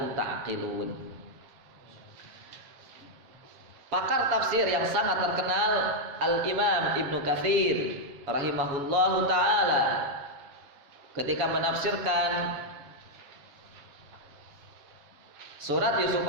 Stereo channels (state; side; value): late; left; 7.4 ms